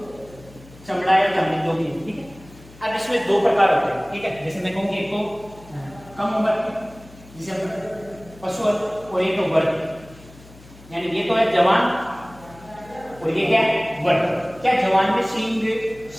चमड़ा या चमड़ी जो भी है, ठीक है। अब इसमें 2 प्रकार होते हैं, ठीक है। जैसे मैं कहूँ एक तो कम उम्र जिसे पशु, और एक तो वर्ग, यानी ये तो है जवान और ये क्या है, वर्ग। क्या जवान में सींग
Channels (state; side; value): noise; left; hum, 22 dB below the sound